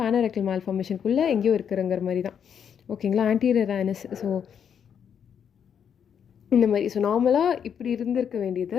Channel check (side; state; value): right; quieter; 8.0 dB